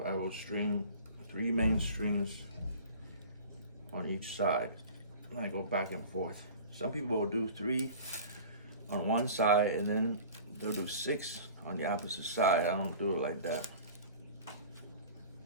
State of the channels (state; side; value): inverted; both; correlation -0.41